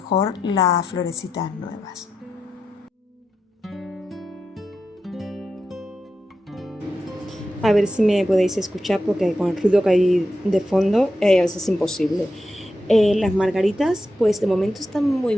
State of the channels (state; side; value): normal; both; correlation 0.87